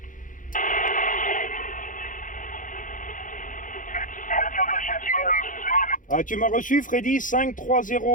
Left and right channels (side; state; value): right; late; 0.38 ms